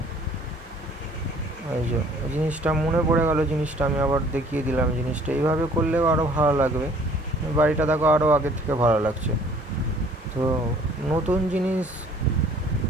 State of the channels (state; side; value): normal; both; correlation 0.56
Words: এই যে জিনিসটা মনে পড়ে গেল, জিনিসটা আমি আবার দেখিয়ে দিলাম। জিনিসটা এইভাবে করলেও আরও ভালো লাগবে, বাড়িটা দেখো আরও আগের থেকে ভালো লাগছে। তো নতুন জিনিস,